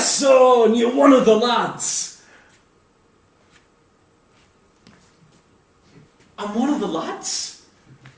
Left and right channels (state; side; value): identical; both; correlation 1.00